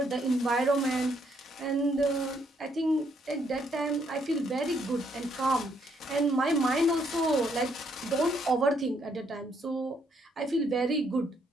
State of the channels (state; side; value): normal; both; correlation 0.71